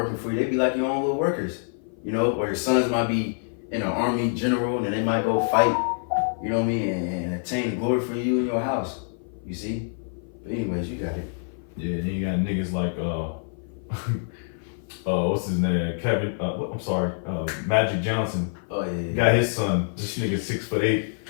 for you. They be like your own little workers. You know, or your sons might be in an army general and they might go fight. You know what I mean? And attain the glory for you in your house. You see? But anyways, you got it. Yeah, then you got niggas like what's his name? Kevin. Magic Johnson. Oh yeah. He got his son. This nigga 6'8",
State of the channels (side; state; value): right; silent; 55 dB below the other